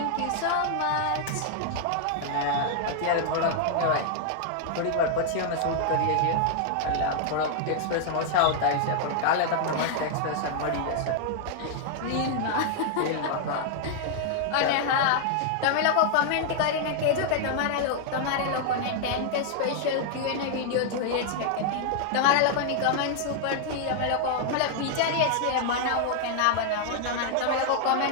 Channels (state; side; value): different; both; correlation 0.00